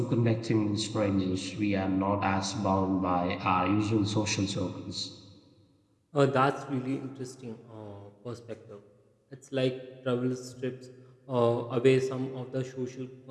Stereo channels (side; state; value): both; identical; correlation 1.00